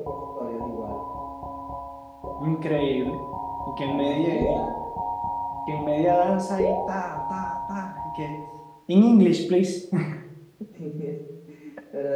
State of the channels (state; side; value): identical; both; correlation 1.00